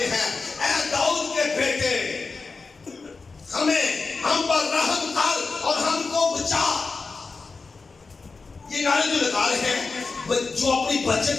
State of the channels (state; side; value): quieter; right; 4.3 dB